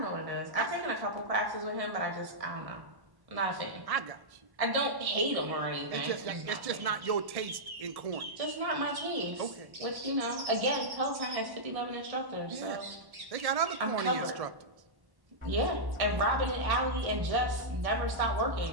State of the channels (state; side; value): late; left; 1.1 ms